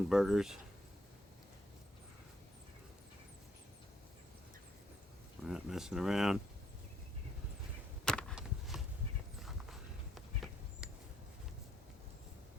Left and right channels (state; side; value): normal; both; correlation 0.72